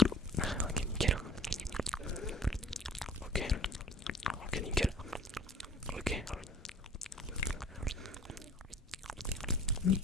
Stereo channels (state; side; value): normal; both; correlation 0.48